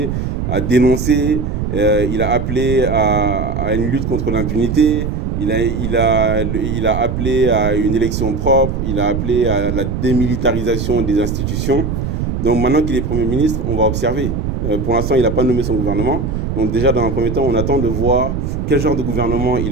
à dénoncer, il a appelé à une lutte contre l'impunité, il a appelé à une élection propre, il a appelé à la démilitarisation des institutions. Donc maintenant qu'il est Premier ministre, on va observer. Pour l'instant, il n'a pas nommé son gouvernement. Donc déjà, dans un premier temps, on attend de voir quel genre de gouvernement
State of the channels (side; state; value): right; noise; rumble, 2 dB below the sound